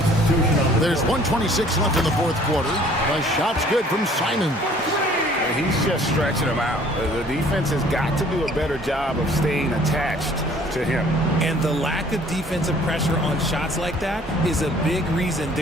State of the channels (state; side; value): normal; both; correlation 0.55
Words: on the There's 1:26 left in the fourth quarter. The shot's good from Simon. He's just stretching them out. The defense has got to do a better job of staying attached to him. And the lack of defensive pressure on shots like that is a big reason